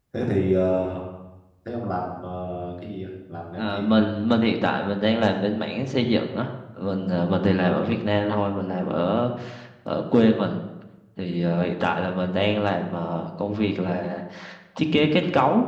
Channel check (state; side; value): identical; both; correlation 1.00